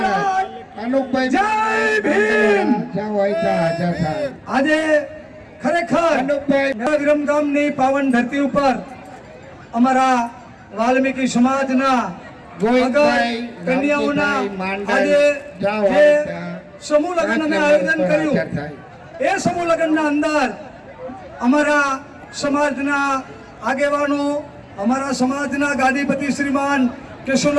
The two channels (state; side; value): identical; both; correlation 1.00